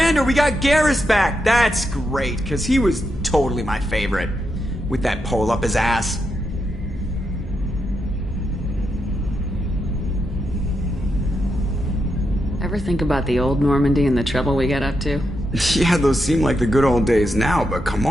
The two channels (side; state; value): both; normal; correlation 0.84